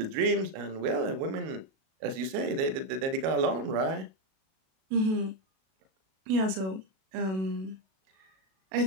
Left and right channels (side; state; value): left; late; 37 ms